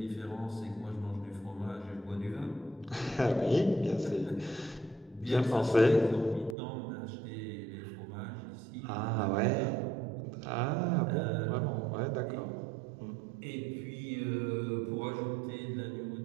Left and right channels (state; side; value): drops out; left; at 6.6 s